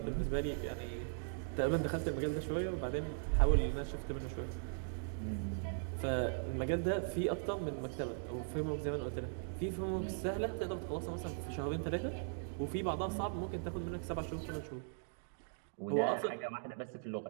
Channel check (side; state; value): left; silent; digital silence